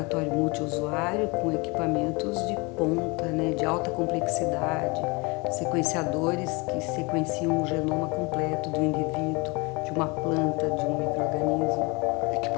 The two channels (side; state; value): right; quieter; 27.8 dB